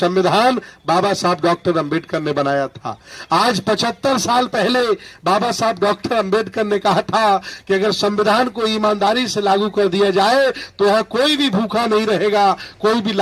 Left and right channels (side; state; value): both; identical; correlation 1.00